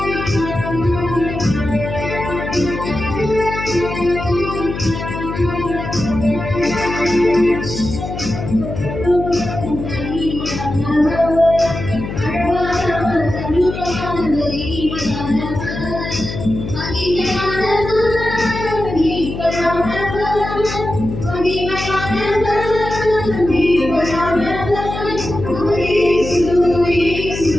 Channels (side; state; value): left; noise; hum, 7 dB below the sound